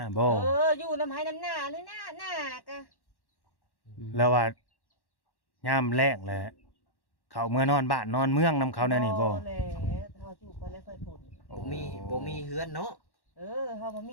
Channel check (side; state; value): right; late; 1.1 ms